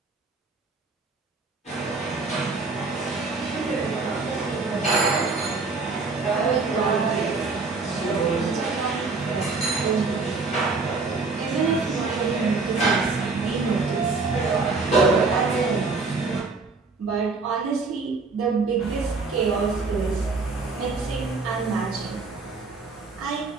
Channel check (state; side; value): quieter; left; 4.0 dB